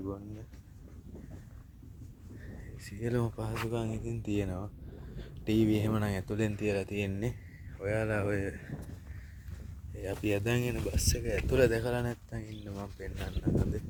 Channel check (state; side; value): identical; both; correlation 1.00